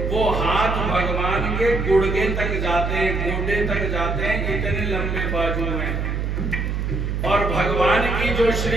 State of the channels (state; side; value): noise; right; hum, 1 dB below the sound